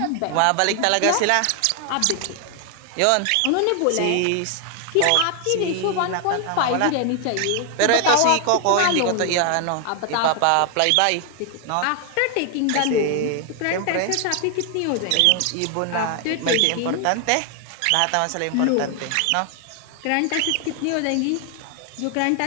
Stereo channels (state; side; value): different; both; correlation 0.00